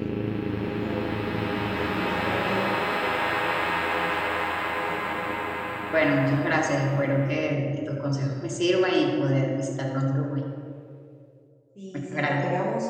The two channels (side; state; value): both; identical; correlation 1.00